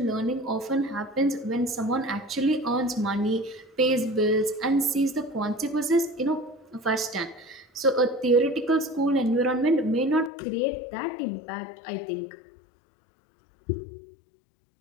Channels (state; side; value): drops out; right; at 10.3 s